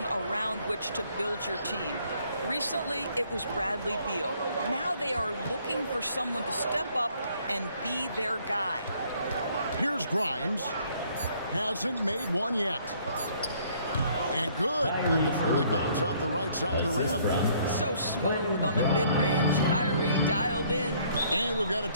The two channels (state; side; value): inverted; both; correlation -0.63